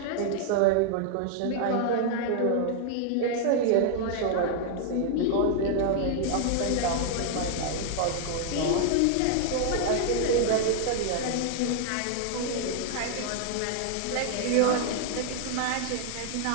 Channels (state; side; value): different; both; correlation 0.00